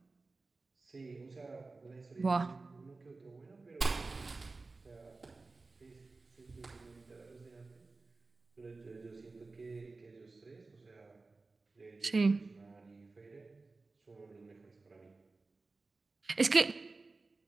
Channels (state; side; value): quieter; left; 3.6 dB